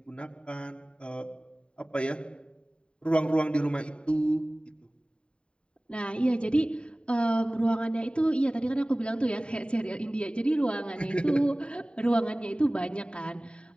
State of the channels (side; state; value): right; late; 0.054 ms